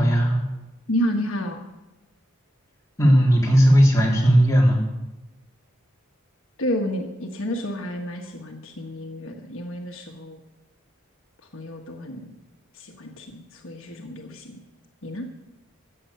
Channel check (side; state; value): both; normal; correlation 0.89